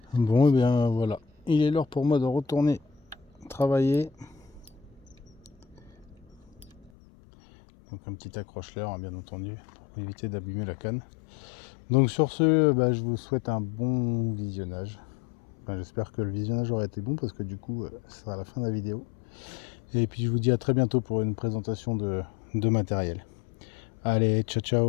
Bon, et bien voilà, il est l'heure pour moi de retourner travailler. Donc un petit accroche-leurre, hein, bien entendu, pour éviter d'abîmer la canne. Donc sur ce, je vous souhaite un bon visionnage. Enfin, j'espère que le visionnage aura été bon parce que du coup, ce sera la fin de la vidéo. Et puis je vous dis à très bientôt pour une présentation de matériel. Allez, ciao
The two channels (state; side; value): drops out; right; at 6.9 s